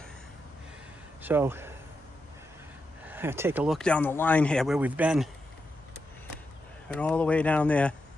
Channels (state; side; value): normal; both; correlation 0.86